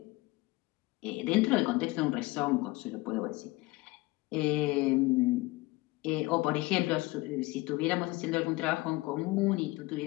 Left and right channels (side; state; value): right; quieter; 21.5 dB